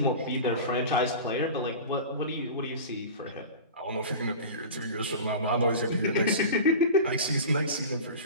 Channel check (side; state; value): both; inverted; correlation -0.32